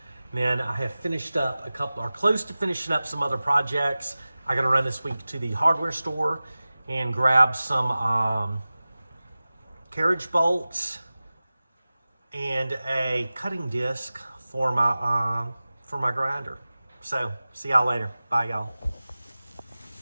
And then I have finished up a couple, or close to finishing up some other projects. I got to run this week to the hardware store and grab some carriage bolts and a cutting disc for my grinder. So, see y'all later. Bye, y'all.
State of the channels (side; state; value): both; inverted; correlation -0.97